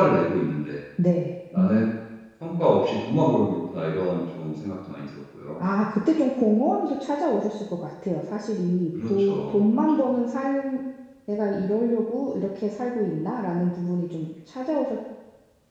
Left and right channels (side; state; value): both; identical; correlation 1.00